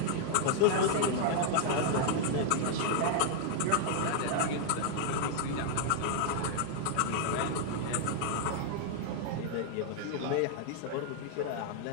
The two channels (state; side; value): different; both; correlation 0.00